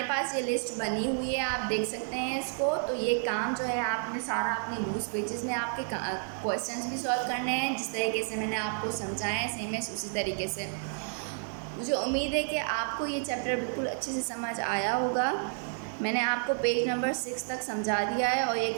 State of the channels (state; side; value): silent; left; 57 dB below the other